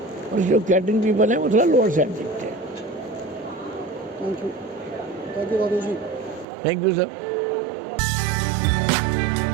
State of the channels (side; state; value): left; drops out; at 6.5 s